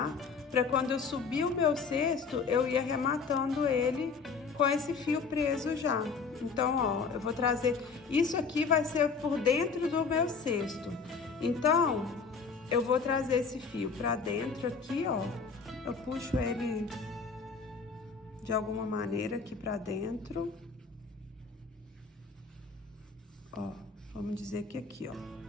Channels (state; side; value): quieter; right; 5.1 dB